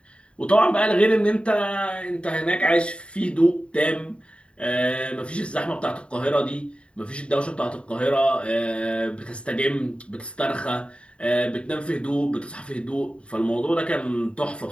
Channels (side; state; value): right; late; 0.059 ms